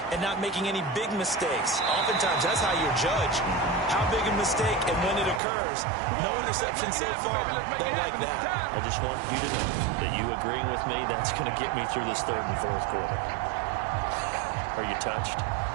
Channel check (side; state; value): left; drops out; at 5.4 s